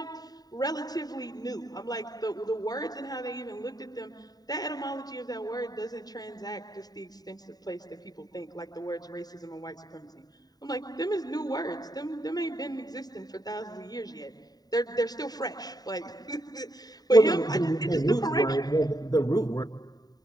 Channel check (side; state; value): right; late; 0.18 ms